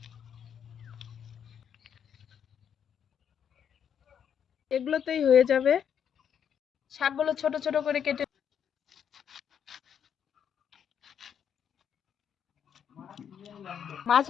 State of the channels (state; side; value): quieter; right; 8.3 dB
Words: এগুলোতেই হয়ে যাবে। শাকগুলো ছোট ছোট করে কেটে মাছ